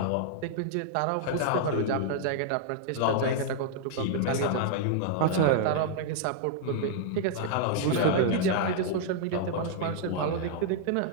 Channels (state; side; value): different; both; correlation -0.01